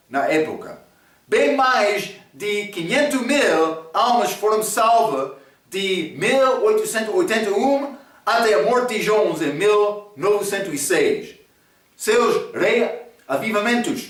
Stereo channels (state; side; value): identical; both; correlation 1.00